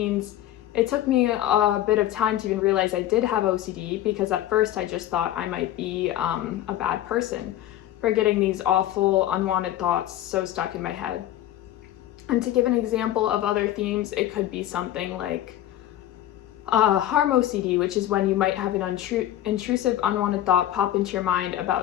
it took me a bit of time to even realize I did have OCD, because at first I just thought I might be a bad person for getting these awful unwanted thoughts so stuck in my head. And to give an example of other themes, it could be something like harm OCD, which is when you might have an intrusive, unwanted thought pop into your mind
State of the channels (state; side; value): quieter; right; 12.9 dB